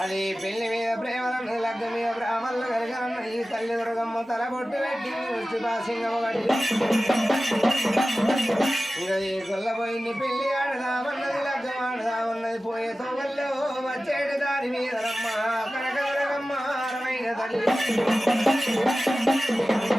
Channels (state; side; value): normal; both; correlation 0.96